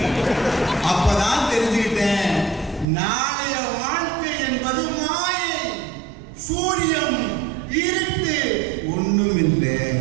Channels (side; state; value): left; drops out; at 2.9 s